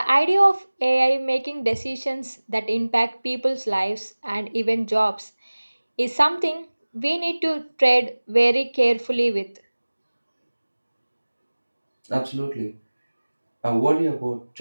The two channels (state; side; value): inverted; both; correlation -1.00